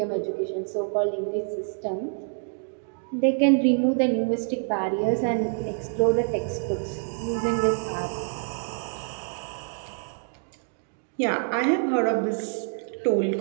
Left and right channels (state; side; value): silent; left; 60 dB below the other